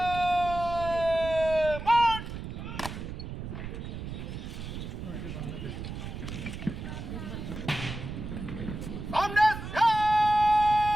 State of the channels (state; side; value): noise; right; rumble, 8 dB below the sound